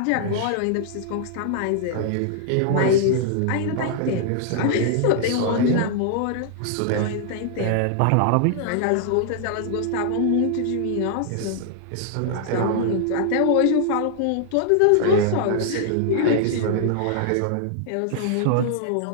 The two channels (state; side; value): different; both; correlation -0.01